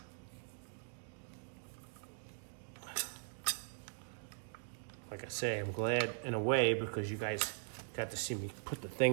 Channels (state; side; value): silent; left; digital silence